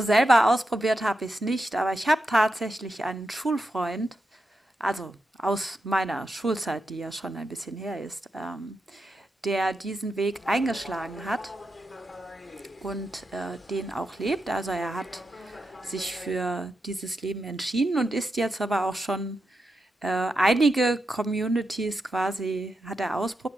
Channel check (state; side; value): normal; both; correlation 0.87